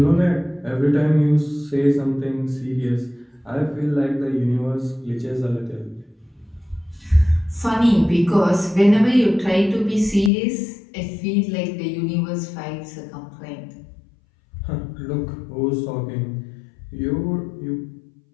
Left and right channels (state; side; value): drops out; right; at 10.3 s